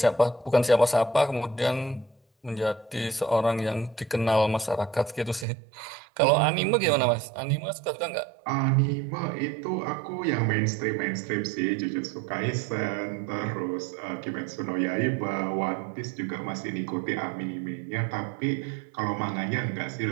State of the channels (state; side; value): drops out; left; at 5.5 s